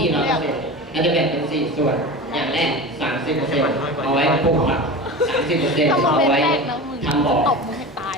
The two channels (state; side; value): normal; both; correlation 0.30